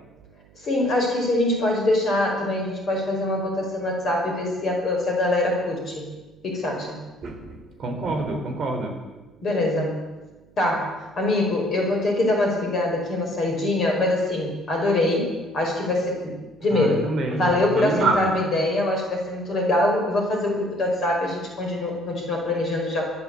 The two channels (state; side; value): noise; right; hum, 28 dB below the sound